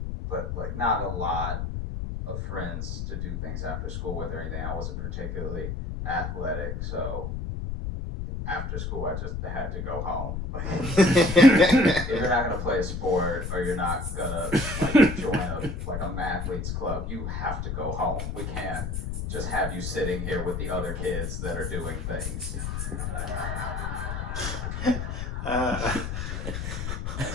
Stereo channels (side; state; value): left; noise; rumble, 4 dB below the sound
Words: but like not a lot of friends to do things after school with or anything. I wasn't particularly athletic, so after school I just had to go home. If you're not gonna play a sport or you're not gonna like join a mathletes club, you have to go home. We can't just have you sitting here with the other kids that are doing things.